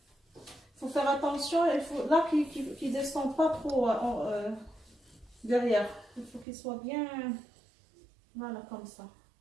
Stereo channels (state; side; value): drops out; left; at 6.5 s